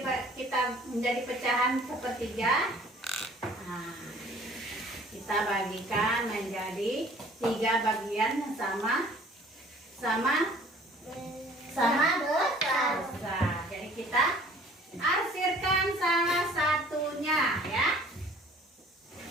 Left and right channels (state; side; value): normal; both; correlation 0.52